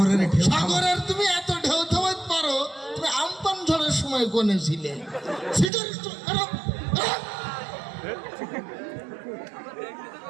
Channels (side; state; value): left; drops out; at 5.7 s